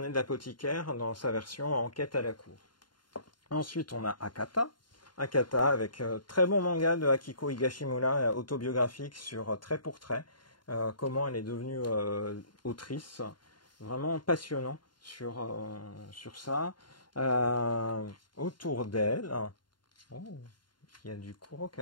de l'apothicaire dans sa version Enquête à la cour. Ensuite, on a Akata. Akata avec très bon manga de Akiko Higashimura, autobiographique sur trait pour trait. Comment elle est devenue autrice. Vraiment passionnant sur ça. Autour d'elle, il y a du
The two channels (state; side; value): late; right; 0.71 ms